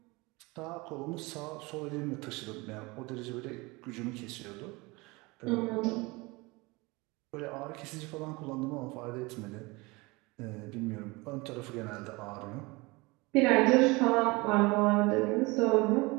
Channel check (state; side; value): quieter; left; 24.5 dB